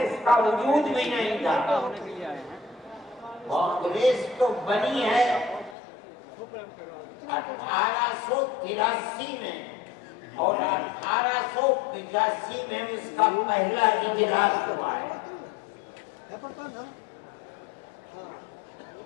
کا وجود بھی نہیں تھا. کانگریس تو بنی ہے 1883 میں اور 1885 میں اس کا پہلا اجلاس ہوا ہے,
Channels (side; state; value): right; drops out; at 5.8 s